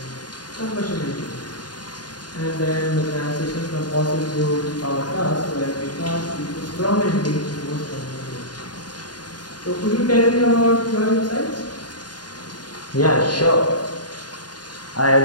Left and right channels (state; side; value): late; right; 0.70 ms